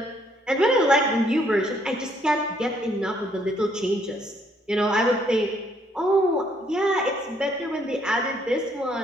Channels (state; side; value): normal; both; correlation 0.68